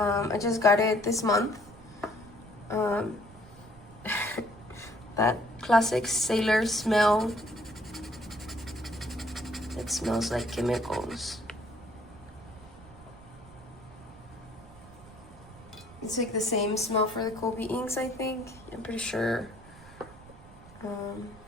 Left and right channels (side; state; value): right; noise; rumble, 20 dB below the sound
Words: just got it this month. That classic Cellar smell. It smells like chemicals. It's like the same smell for the Kobe inks, I think. I'm pretty sure.